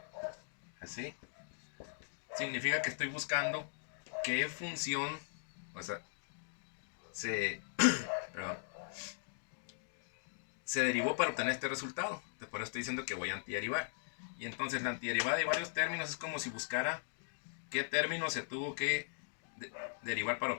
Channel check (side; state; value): right; silent; digital silence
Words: así, significa que estoy buscando qué función, o sea, perdón, se derivó para obtener este resultado. Entonces, por eso estoy diciendo que voy a antiderivar. Y entonces la antiderivada de varios términos es como si buscara qué término se tuvo que derivar para